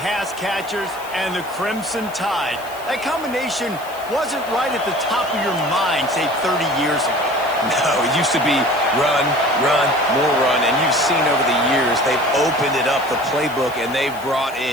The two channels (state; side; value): noise; left; hiss, 19 dB below the sound